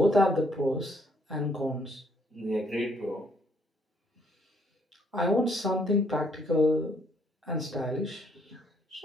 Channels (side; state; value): both; normal; correlation 0.68